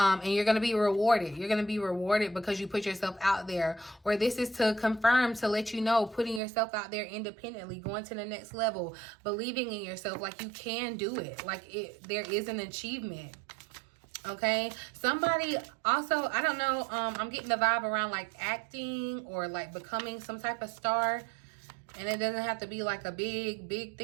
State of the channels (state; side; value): drops out; left; at 6.4 s